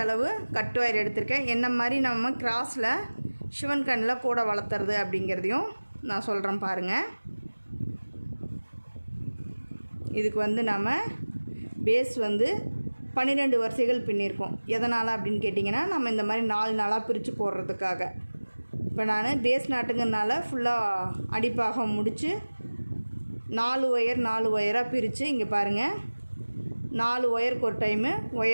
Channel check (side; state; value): both; inverted; correlation -1.00